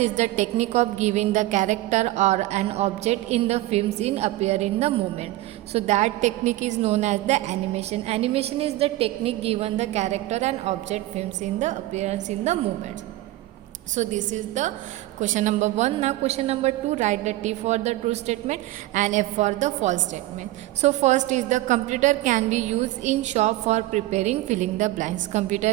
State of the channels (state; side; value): quieter; left; 17.0 dB